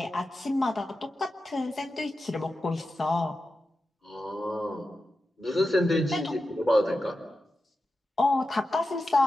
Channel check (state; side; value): normal; both; correlation 0.91